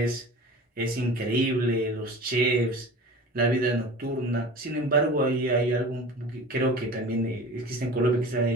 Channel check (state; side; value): normal; both; correlation 0.38